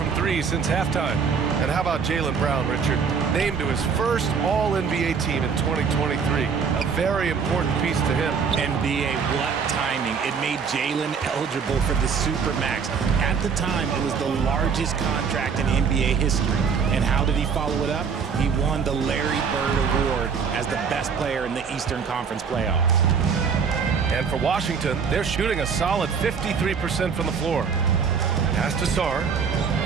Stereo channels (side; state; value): left; quieter; 6.1 dB